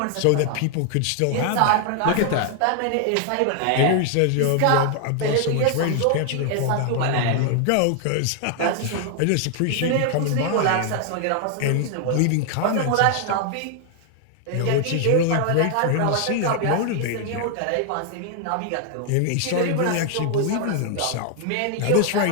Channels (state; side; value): different; both; correlation 0.00